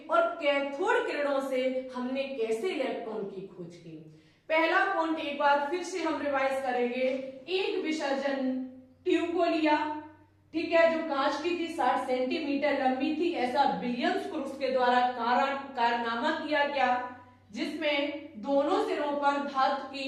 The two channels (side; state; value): both; identical; correlation 1.00